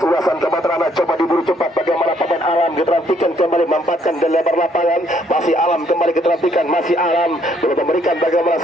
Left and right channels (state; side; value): normal; both; correlation 0.68